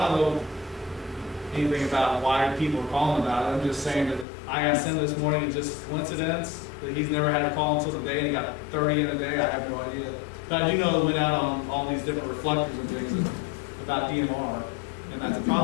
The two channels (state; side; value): drops out; right; at 4.2 s